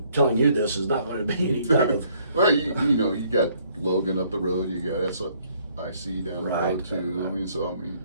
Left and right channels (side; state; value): both; inverted; correlation -0.65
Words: telling you this is not going to be any kind of well, you got Logan up the road, you got SIC down the road too.